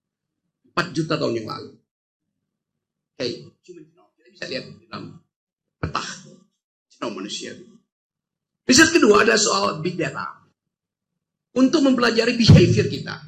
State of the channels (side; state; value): both; identical; correlation 1.00